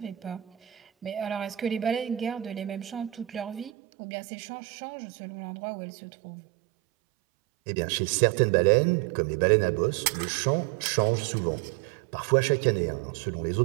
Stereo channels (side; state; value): left; drops out; at 3.7 s